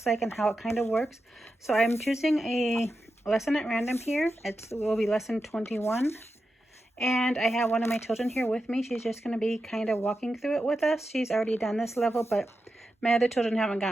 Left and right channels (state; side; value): normal; both; correlation 0.89